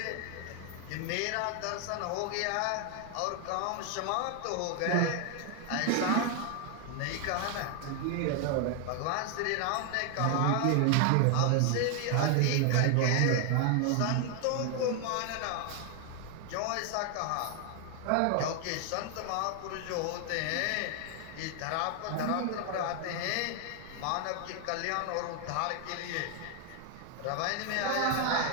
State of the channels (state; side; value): different; both; correlation 0.00